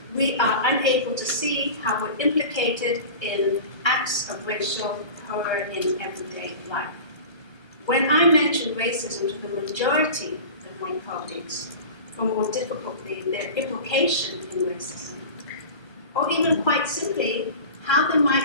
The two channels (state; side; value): late; right; 1.3 ms